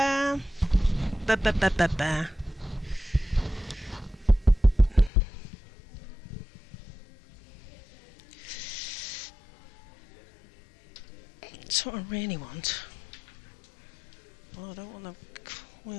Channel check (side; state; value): right; drops out; at 5.1 s